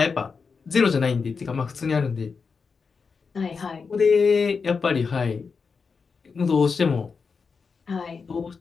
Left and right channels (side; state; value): right; quieter; 5.2 dB